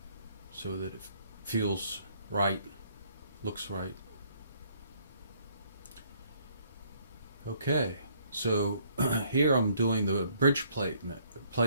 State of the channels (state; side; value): inverted; both; correlation -0.64